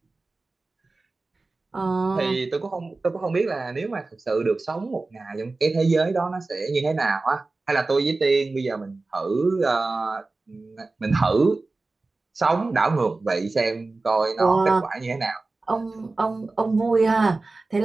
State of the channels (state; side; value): quieter; left; 3.5 dB